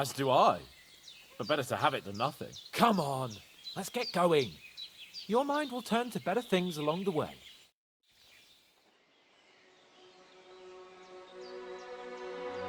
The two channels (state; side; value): identical; both; correlation 1.00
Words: do I. But better to have it than nothing. Come on, let's get going. Your mind will turn to better things along the way.